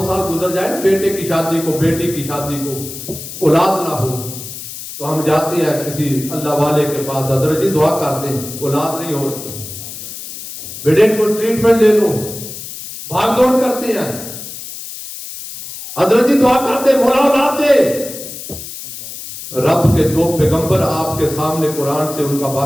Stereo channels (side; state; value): left; noise; hiss, 11 dB below the sound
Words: سال گزر جائے نا، بیٹے کی شادی کو، بیٹی کی شادی کو، اولاد نہ ہو تو ہم جاتے ہیں کسی اللہ والے کے پاس، حضرت جی دعا کرتے ہیں، اولاد نہیں ہو رہی، بیٹے کو ٹریٹمنٹ لے لو، بھاگ دوڑ کرتے ہیں، حضرت جی دعا کرتے مولا اولاد دے۔ رب کے 2 پیغمبر آپ کے سامنے قرآن سے ان کا